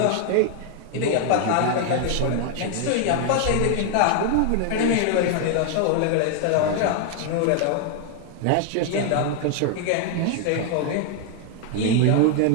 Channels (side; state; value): both; different; correlation 0.00